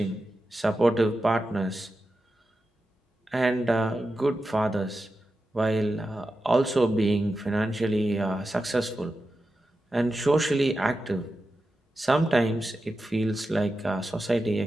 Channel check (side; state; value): both; normal; correlation 0.91